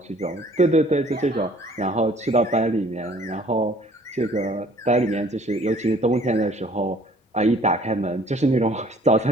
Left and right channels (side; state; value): both; normal; correlation 0.56